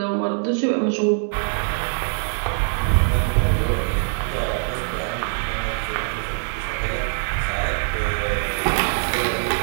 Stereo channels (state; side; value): silent; left; 64 dB below the other